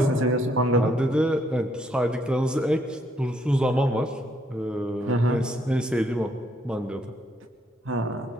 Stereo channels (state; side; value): normal; both; correlation 0.71